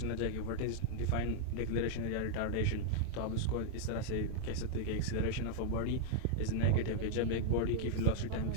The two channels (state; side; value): different; both; correlation -0.01